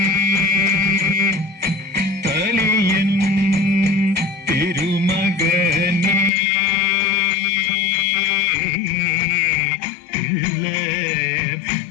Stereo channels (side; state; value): right; drops out; at 6.3 s